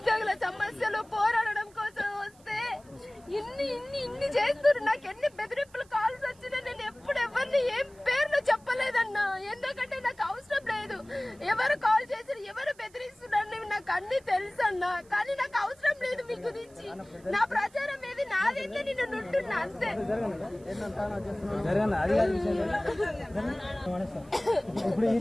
సమస్యలు పోరాడడం కోసం వస్తే ఇన్ని చేస్తున్నారు. నాకు ఎన్ని బెదిరింపులు కాల్స్ వచ్చినా నేను ఎప్పుడు ఎవరిని ఏం పేర్లు చెప్పలేదన్నా. ఎందుకంటే నాకు అవసరం లేదు. ఎవరు కాల్ చేసి ఎవరు బెదిరిస్తున్నారు నాకు అన్ని తెలుసు అన్నా. కానీ నాకు అవసరం లేదు మీ గురించి. నా ప్రచారం ఏది నాదైతే నేను నుంటున్నా అంతే. ఇప్పుడు ఈ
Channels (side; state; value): right; noise; hiss, 28 dB below the sound